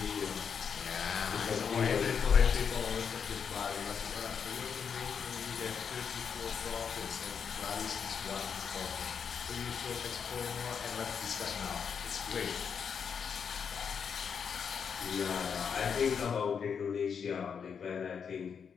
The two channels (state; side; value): quieter; right; 6.8 dB